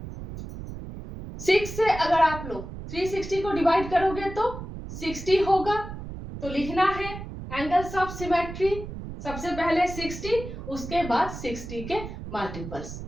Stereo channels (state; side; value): noise; right; rumble, 10 dB below the sound